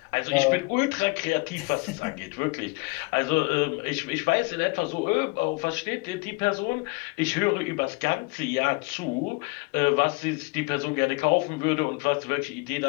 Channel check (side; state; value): right; quieter; 27.8 dB